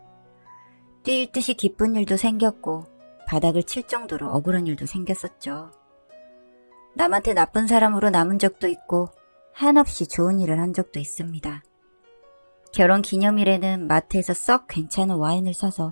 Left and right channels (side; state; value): both; inverted; correlation -1.00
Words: 뛸 듯이 기쁜 일도 생겼고 바닥을 칠 정도로 억울한 일도 생겼었죠. 남한테 나쁜 사람으로 남은 적도 있고 한없이 좋은 일을 한 적도 있습니다. 결혼 기념일에는 마트에서 썩 괜찮은 와인을